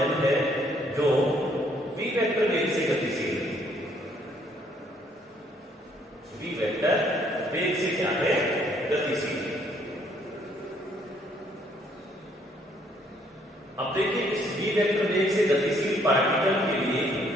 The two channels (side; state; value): both; normal; correlation 0.66